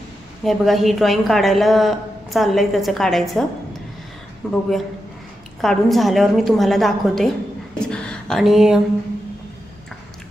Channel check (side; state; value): both; normal; correlation 0.88